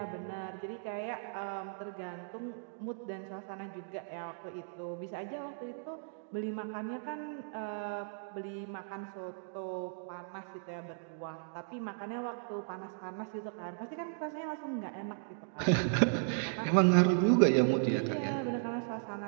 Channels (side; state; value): left; silent; digital silence